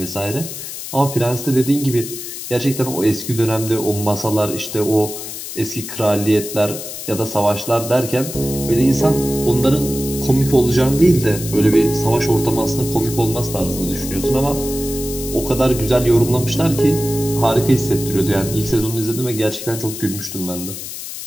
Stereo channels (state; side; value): noise; left; hiss, 9 dB below the sound